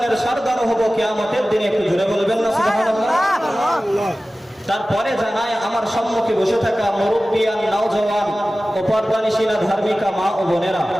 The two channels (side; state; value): both; normal; correlation 0.96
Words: সরদার হব কিয়ামতের দিনে। একটু জোরে বলবেন না সুবহানাল্লাহ। তারপরে জানায় আমার সম্মুখে বসে থাকা মুরব্বিয়ান, নওজওয়ান ও পর্দানিশীলা ধার্মিকা মা ও বোনেরা,